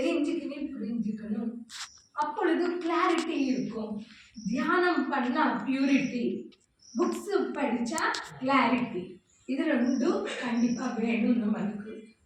புரிஞ்சுக்கணும். அப்பொழுது கிளாரிட்டி இருக்கும். தியானம் பண்ணா பியூரிட்டி, புக்ஸ் படிச்சா கிளாரிட்டி, இது ரெண்டும் கண்டிப்பா வேணும் நம்மளுக்கு.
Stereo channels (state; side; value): identical; both; correlation 1.00